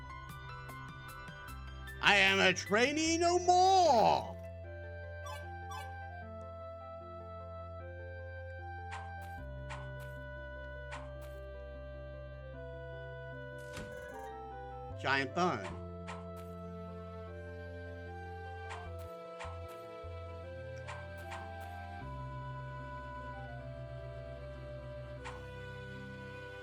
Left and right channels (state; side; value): identical; both; correlation 1.00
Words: I am a trainee no more! Giant Bone.